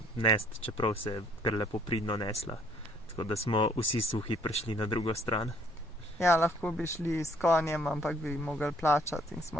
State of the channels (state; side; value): normal; both; correlation 0.62